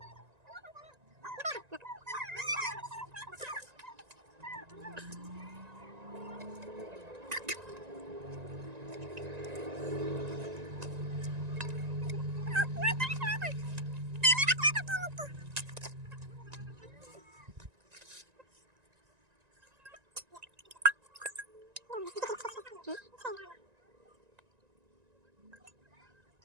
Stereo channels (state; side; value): late; left; 1.9 ms